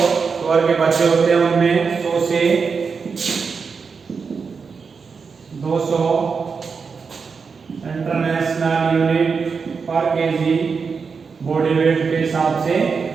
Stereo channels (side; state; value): left; quieter; 5.4 dB